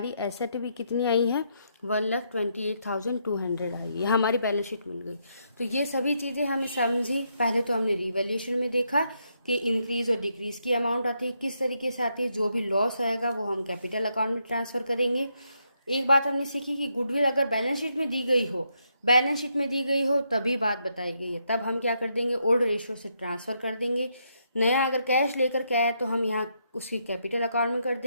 एसेट भी कितनी आई है, 1,28,200 आई है, हमारी बैलेंस शीट मिल गई। तो ये सभी चीज़ें हमें समझी। पहले तो हमने रिवैल्यूएशन में देखा कि इंक्रीज और डिक्रीज की अमाउंट आती है, किस तरीके से आती है, जो भी लॉस आएगा वो हम कैपिटल अकाउंट में ट्रांसफ़र करेंगे। एक बात हमने सीखी कि गुडविल अगर बैलेंस शीट में दी गई हो तभी बात बताई गई है, तब हम क्या कर देंगे, ओल्ड रेशियो से ट्रांसफ़र कर देंगे। नया अगर कैश लेकर के आए तो हम यहाँ उसकी कैपिटल अकाउंट में कर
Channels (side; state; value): both; inverted; correlation -0.78